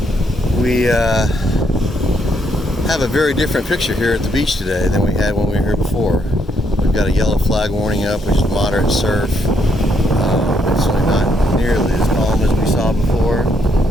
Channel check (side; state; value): both; normal; correlation 0.74